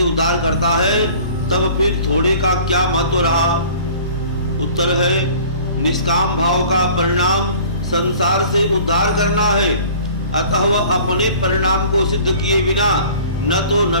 उद्धार करता है, तब फिर थोड़े का क्या महत्व रहा? उत्तर है निष्काम भाव का परिणाम संसार से उद्धार करना है, अतः वह अपने परिणाम को सिद्ध किए बिना न तो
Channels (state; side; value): inverted; both; correlation -0.47